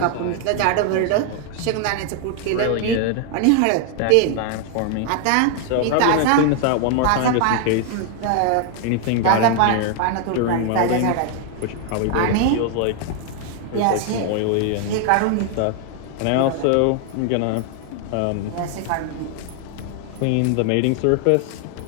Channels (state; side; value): different; both; correlation 0.00